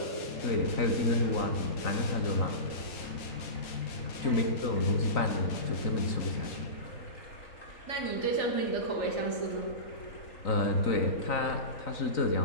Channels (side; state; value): right; late; 4.2 ms